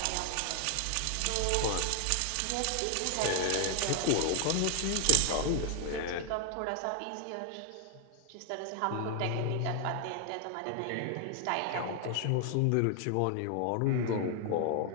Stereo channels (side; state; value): both; different; correlation 0.00